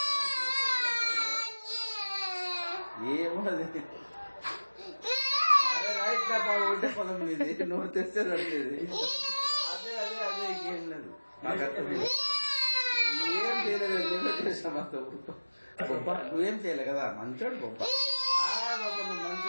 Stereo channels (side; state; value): both; inverted; correlation -1.00